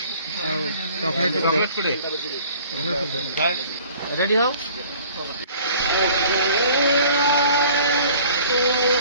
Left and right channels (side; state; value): both; inverted; correlation -0.51